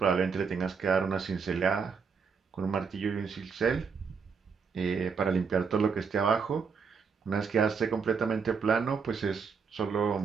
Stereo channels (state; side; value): quieter; left; 5.8 dB